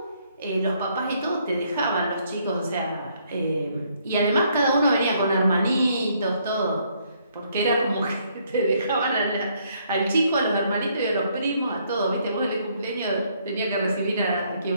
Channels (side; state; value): both; inverted; correlation -0.69